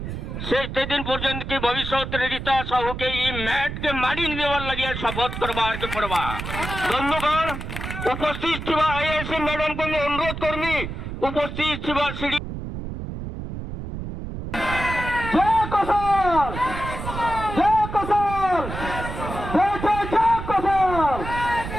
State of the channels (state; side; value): noise; right; rumble, 7 dB below the sound